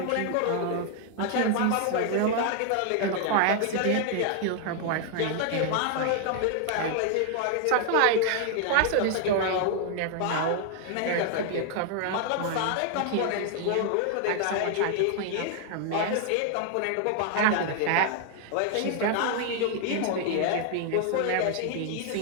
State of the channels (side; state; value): both; different; correlation 0.00